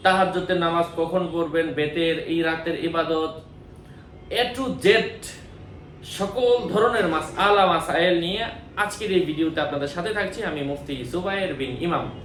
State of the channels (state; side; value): identical; both; correlation 1.00